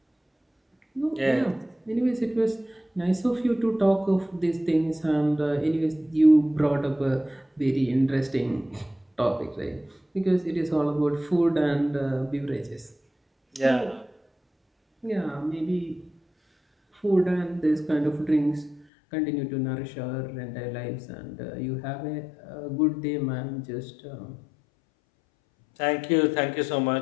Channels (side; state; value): right; drops out; at 18.9 s